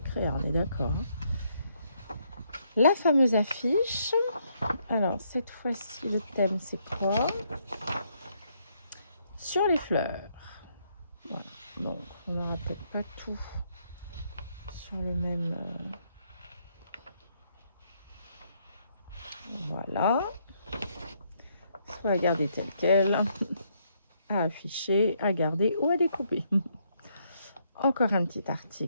crayons, on est d'accord. La fameuse affiche. Alors, cette fois-ci, le thème, c'est quoi? Sur les fleurs. Voilà. Donc, on n'aura peut-être pas tout sur le même... Voilà. Soit à garder tel quel, à afficher, à garder ou à découper. Encore un petit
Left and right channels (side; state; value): both; inverted; correlation -0.73